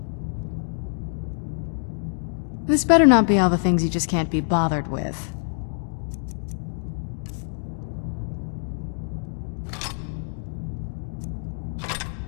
This better not be all the things you just can't be bothered with.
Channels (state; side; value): silent; right; digital silence